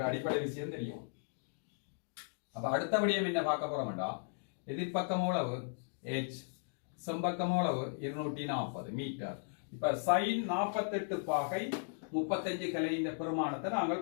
அடிப்படை விஷயம் தெரியும். அப்ப அடுத்தபடியும் என்ன பார்க்க போறோம்டா, எதிர்ப்பக்கம் எவ்வளவு h, செம்பக்கம் எவ்வளவு 240 மீட்டர். இப்ப சைன் 48 பாகை 35 கலையின் பெருமானத்தை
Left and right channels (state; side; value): silent; right; digital silence